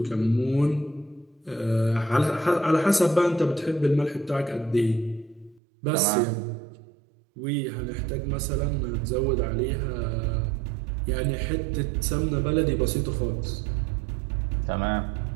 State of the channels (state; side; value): drops out; left; at 5.6 s